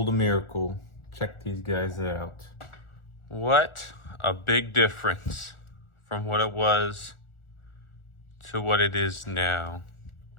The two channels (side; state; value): right; late; 1.4 ms